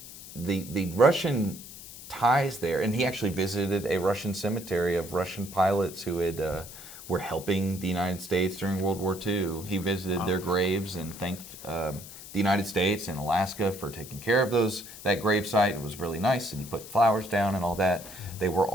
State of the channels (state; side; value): noise; left; hiss, 15 dB below the sound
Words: Russian ties there, and he actually visited a Russian cemetery of Russian pilots who were helping the United States during World War II. He visited their graves and thanked the United States and Alaska for taking care of that gravesite. It was really nice, and he put flowers down and all that. They were